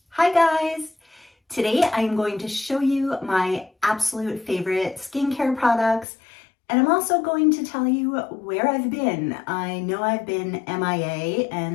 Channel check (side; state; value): right; drops out; at 6.1 s